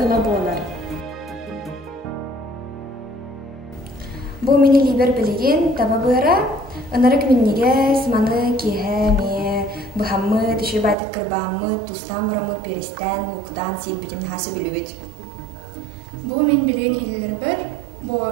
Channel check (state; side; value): drops out; left; at 11.0 s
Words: болар. Бұл мені либер білеген таба бұра, ынарык меннеге сыманы кеhe ме, бұхаммы, түші байтық кірбаммы, тустан барамы, перестен, луктан сейбетін хасы білует. Бұл мен білген илілер бір,